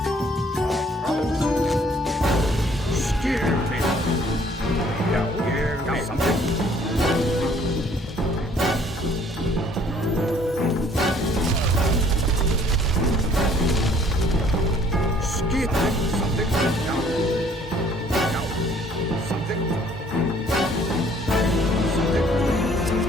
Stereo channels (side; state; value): both; normal; correlation 0.59